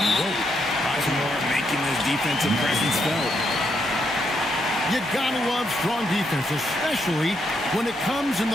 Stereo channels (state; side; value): normal; both; correlation 0.78